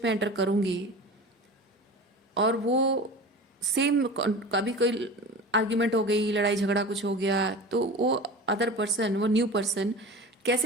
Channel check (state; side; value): normal; both; correlation 0.34